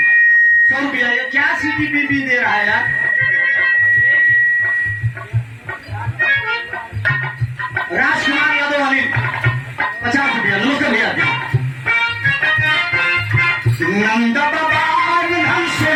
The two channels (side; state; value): both; identical; correlation 1.00